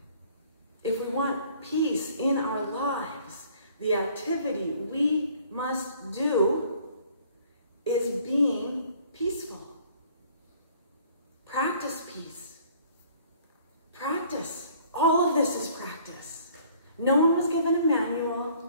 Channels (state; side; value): inverted; both; correlation -0.57